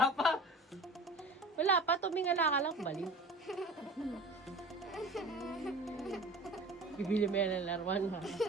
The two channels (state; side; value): normal; both; correlation 0.39